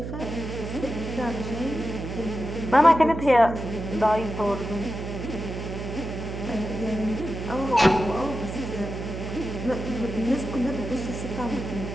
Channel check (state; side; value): noise; right; hum, 6 dB below the sound